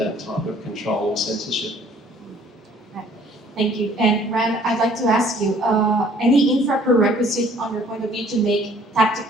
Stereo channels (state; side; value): normal; both; correlation 0.57